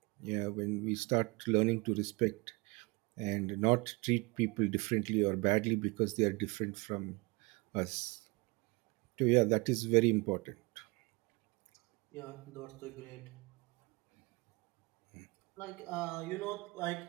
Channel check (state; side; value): quieter; left; 26.3 dB